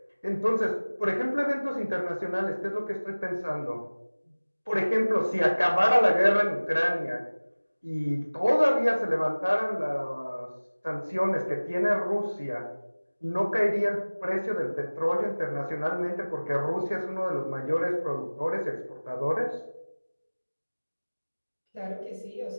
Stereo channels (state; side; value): inverted; both; correlation -1.00